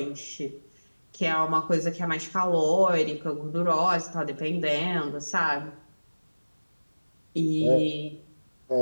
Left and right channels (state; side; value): inverted; both; correlation -1.00